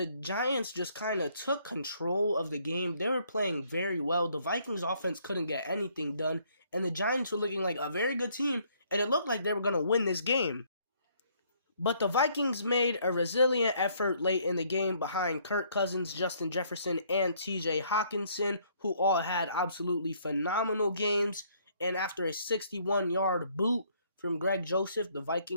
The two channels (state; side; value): inverted; both; correlation -0.66